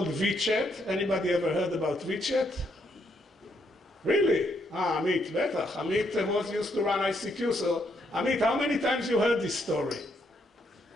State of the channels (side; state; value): both; normal; correlation 0.75